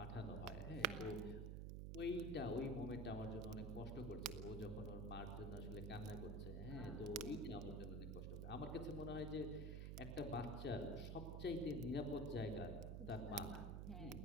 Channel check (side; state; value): right; noise; hum, 3 dB below the sound